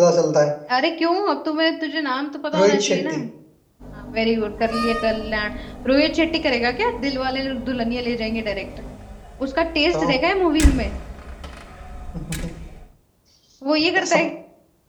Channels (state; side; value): identical; both; correlation 1.00